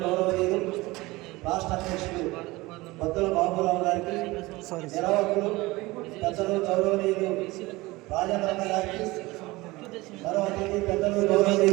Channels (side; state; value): left; quieter; 21.0 dB